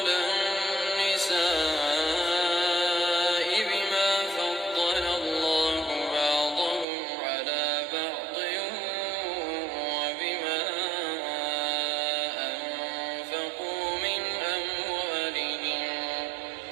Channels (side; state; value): left; drops out; at 6.9 s